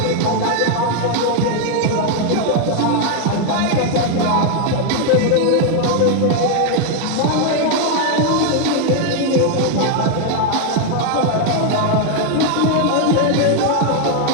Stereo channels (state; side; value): different; both; correlation 0.01